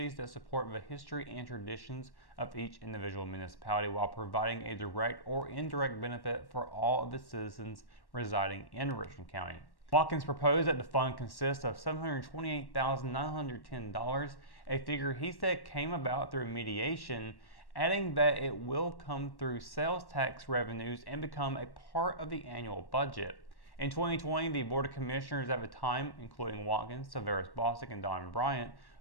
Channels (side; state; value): right; late; 1.1 ms